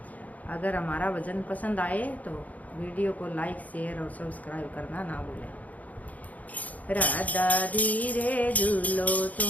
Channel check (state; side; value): late; right; 0.075 ms